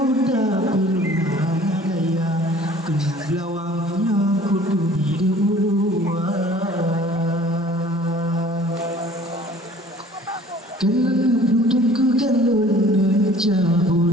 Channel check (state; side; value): normal; both; correlation 0.51